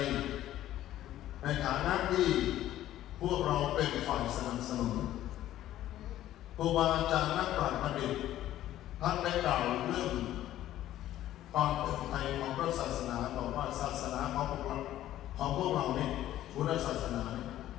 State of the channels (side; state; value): right; quieter; 13.3 dB